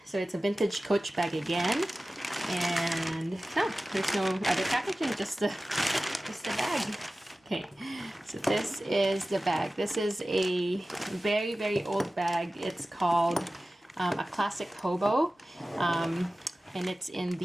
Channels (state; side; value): normal; both; correlation 0.96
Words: So it's a vintage Coach bag again. And no, there's no other packaging, just the bag. Okay, so this is the bag. This is a very, very old bag. It's called a classic HOBO, and it's in